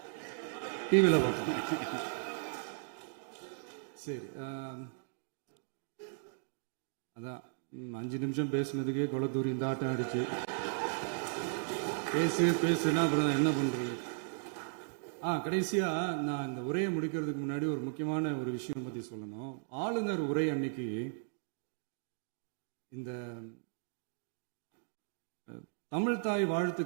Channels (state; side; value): silent; left; digital silence